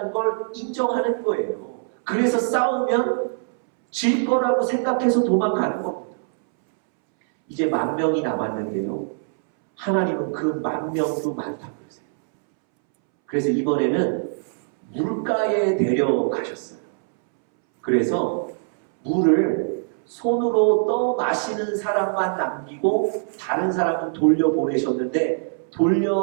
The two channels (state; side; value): silent; left; 64 dB below the other